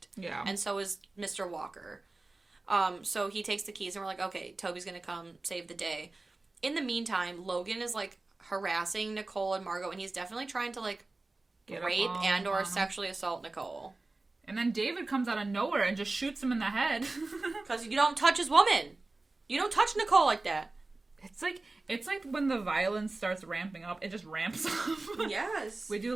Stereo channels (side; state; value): left; quieter; 3.2 dB